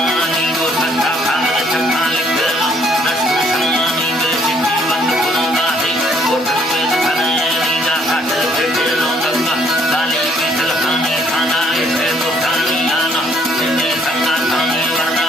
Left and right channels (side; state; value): both; normal; correlation 0.65